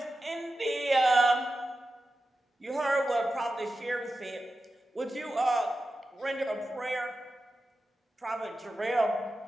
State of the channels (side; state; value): both; normal; correlation 0.92